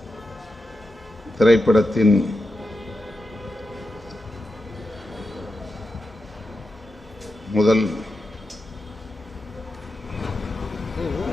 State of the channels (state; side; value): normal; both; correlation 0.89